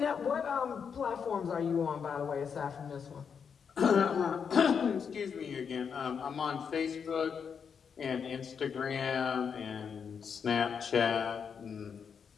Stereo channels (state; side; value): quieter; right; 6.7 dB